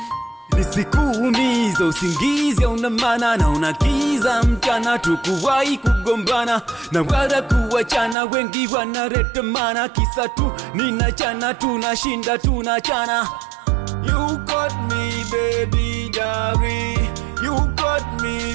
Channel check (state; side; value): drops out; left; at 8.2 s